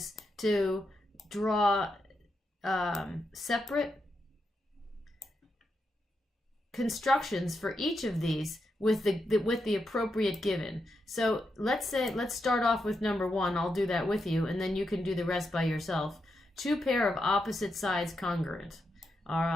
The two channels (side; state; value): both; normal; correlation 0.84